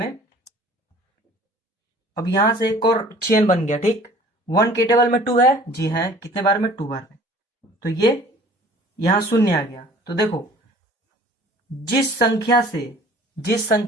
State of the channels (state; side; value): normal; both; correlation 0.50